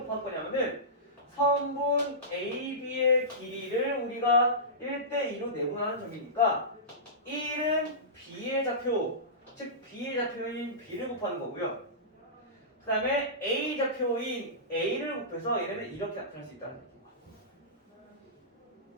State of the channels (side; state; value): both; normal; correlation -0.19